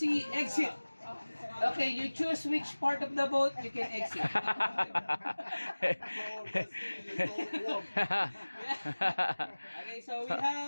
exit. Okay, you choose which part of the boat you can exit. Okay, so we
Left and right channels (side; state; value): both; inverted; correlation -1.00